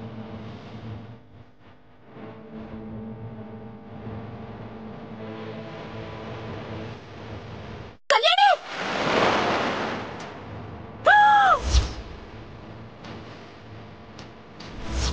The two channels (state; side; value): identical; both; correlation 1.00